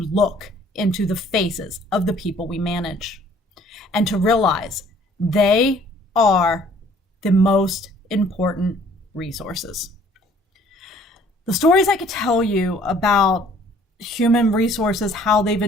into the faces of the people we manage and to realize they are the most important resources. The stories I could tell you about human resources, how they've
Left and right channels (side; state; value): both; normal; correlation 0.57